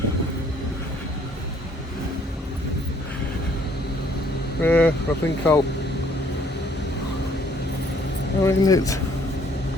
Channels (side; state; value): both; normal; correlation 0.63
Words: Yeah, I think I'll. I mean, it's.